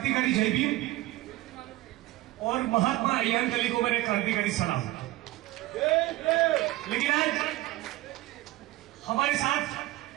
जय भीम और महात्मा अय्यांकली को मेरे क्रांतिकारी सलाम। लेकिन आज हमारे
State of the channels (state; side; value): quieter; left; 17.9 dB